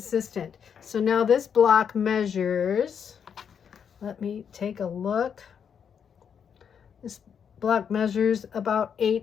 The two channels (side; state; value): right; quieter; 7.4 dB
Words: So now this block measures, let me take a look. This block measures about